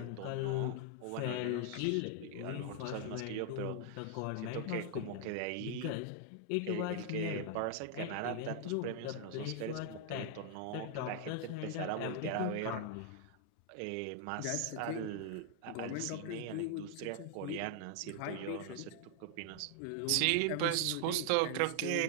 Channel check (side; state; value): both; different; correlation 0.00